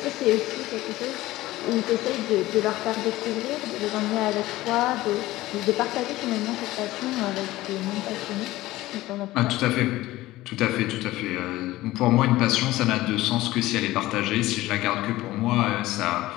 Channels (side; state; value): right; quieter; 17.2 dB